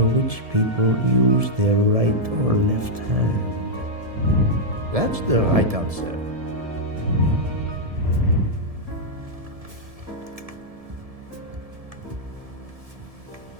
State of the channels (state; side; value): late; left; 1.7 ms